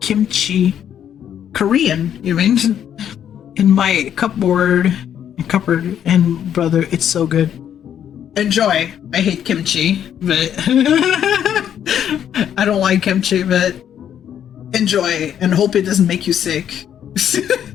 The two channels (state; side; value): quieter; right; 9.5 dB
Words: Korean, you mean, in my cupboard, and brother, it's so good. Enjoy. I hate kimchi, but I don't like kimchi, but enjoy and hope it doesn't make you sick.